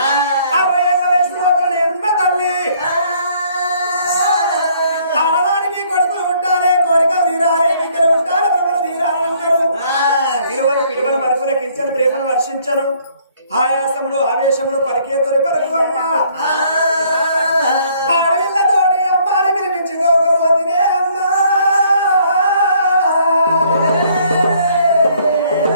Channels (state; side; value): inverted; both; correlation -0.63